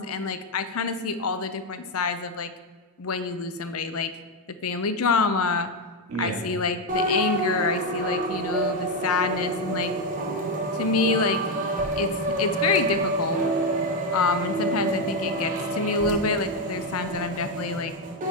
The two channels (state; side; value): normal; both; correlation 0.06